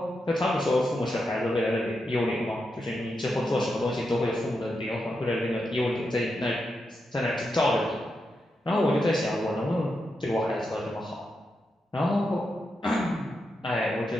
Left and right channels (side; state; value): both; normal; correlation 0.86